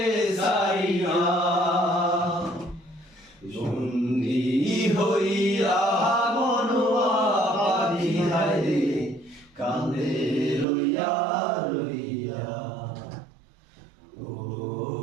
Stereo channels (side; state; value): left; drops out; at 10.7 s